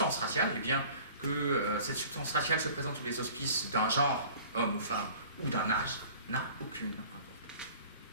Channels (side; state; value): both; inverted; correlation -0.46